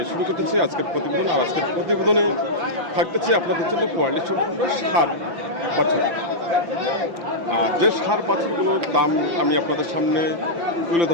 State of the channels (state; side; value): late; left; 5.9 ms